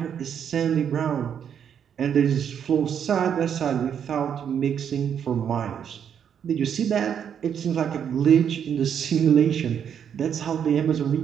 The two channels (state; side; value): quieter; left; 8.3 dB